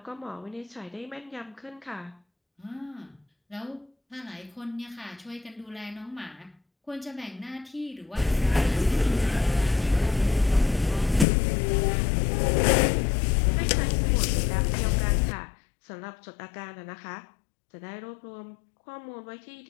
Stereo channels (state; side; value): drops out; right; at 11.2 s